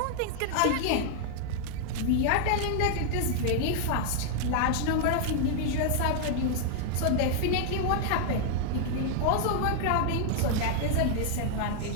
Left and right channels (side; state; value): both; different; correlation -0.01